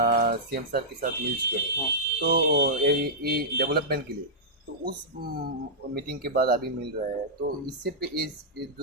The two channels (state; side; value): normal; both; correlation -0.12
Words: सीएम सर के साथ मिल चुके हैं। हाँ। तो ये डेवलपमेंट के लिए, तो उस मीटिंग के बाद अभी मिल रहा है, तो इससे इस